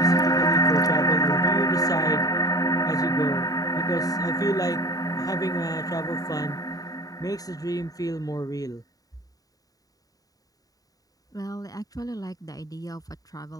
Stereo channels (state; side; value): late; right; 0.18 ms